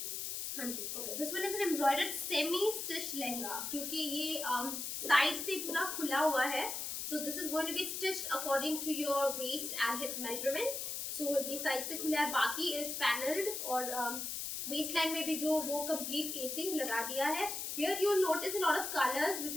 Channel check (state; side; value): noise; left; hiss, 4 dB below the sound